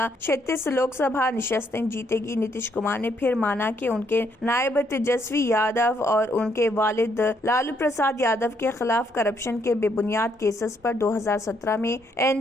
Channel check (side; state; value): both; normal; correlation 0.72